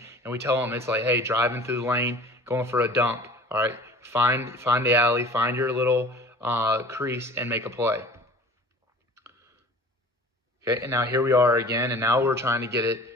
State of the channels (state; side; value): normal; both; correlation 0.45